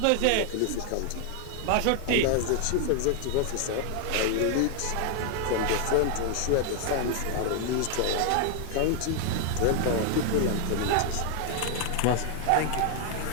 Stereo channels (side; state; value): both; different; correlation 0.00